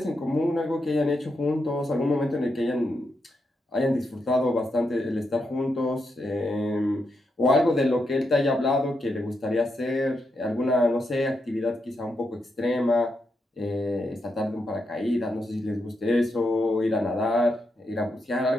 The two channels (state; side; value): normal; both; correlation 0.83